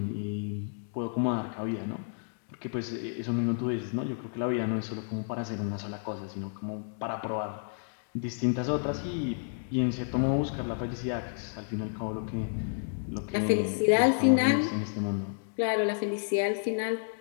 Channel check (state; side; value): silent; right; digital silence